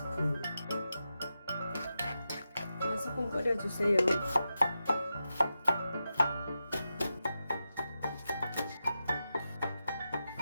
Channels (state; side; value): inverted; both; correlation -0.90